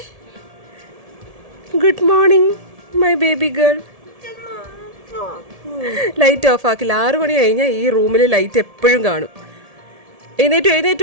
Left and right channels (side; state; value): left; late; 1.7 ms